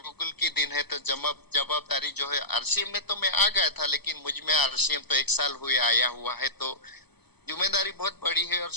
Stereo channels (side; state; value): right; late; 0.99 ms